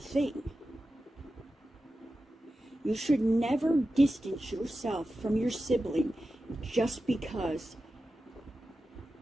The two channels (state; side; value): normal; both; correlation 0.92